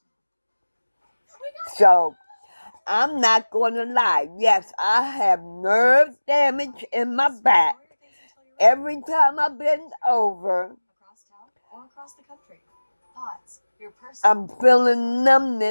So, I'm not going to lie. Yes, I have nerve damage in my back every time I bend over. Across town or across the country. Pods, your personal. I'm feeling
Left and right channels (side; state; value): both; inverted; correlation -1.00